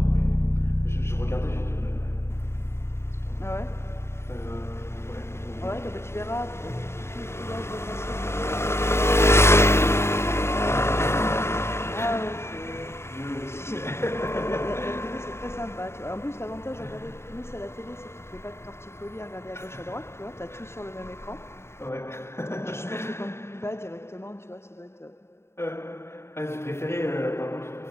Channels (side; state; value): right; late; 0.12 ms